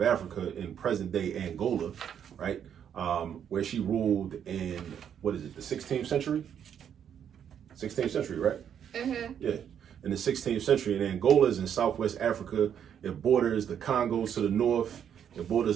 Africa in present-day Angola, right? Where she ruled in, the 16th century? 16th century, right? Mm-hmm. Yeah, in the 16th century. And Angola is in southwest Africa. It borders the Congo to the north. It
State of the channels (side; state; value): left; quieter; 8.8 dB